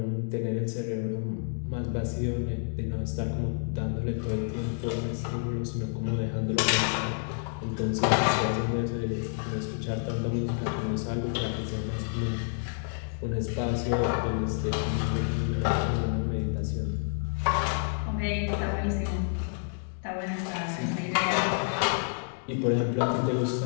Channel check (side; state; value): right; silent; 58 dB below the other